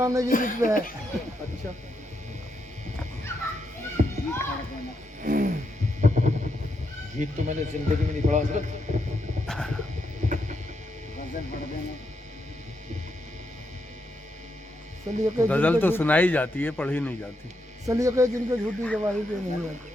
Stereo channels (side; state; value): both; normal; correlation 0.81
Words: की जिद पे है। अच्छा, गीत तो मैंने जिंदगी में नहीं पढ़ा हज़रत। गजल तो सुनाई जाती है, पढ़ी नहीं जाती। सलीके जिनके झूठी गवाही पे नहीं आती।